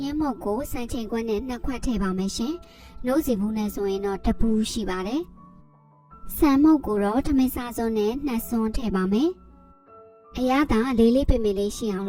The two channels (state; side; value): identical; both; correlation 1.00